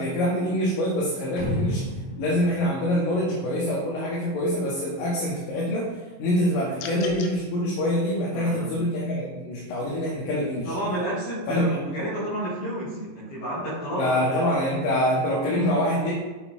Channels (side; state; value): right; late; 22 ms